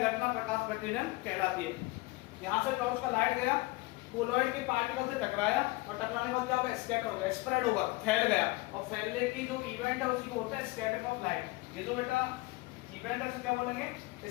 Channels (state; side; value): quieter; right; 22.2 dB